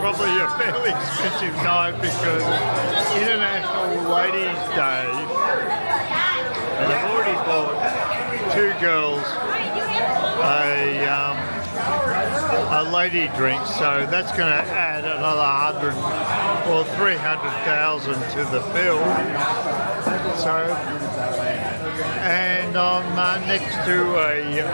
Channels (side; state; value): both; inverted; correlation -1.00